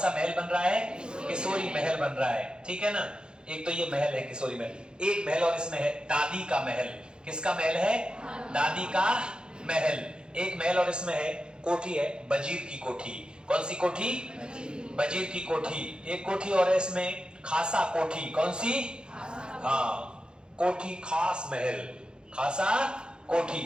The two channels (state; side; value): late; left; 0.049 ms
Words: महल बन रहा है? किशोरी महल बन रहा है। ठीक है ना? एक तो ये महल है किशोरी महल। एक महल और इसमें है दादी का महल। किसका महल है? दादी का महल। एक महल और इसमें है कोठी, है वजीर की कोठी। कौन सी कोठी? वजीर की कोठी। एक कोठी और है इसमें खासा कोठी। कौन सी? हाँ, कोठी खास महल, खासा